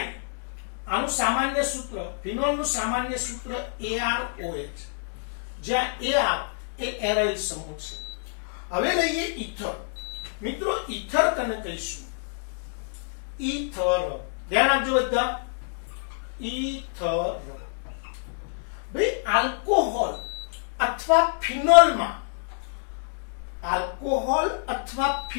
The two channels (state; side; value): silent; right; digital silence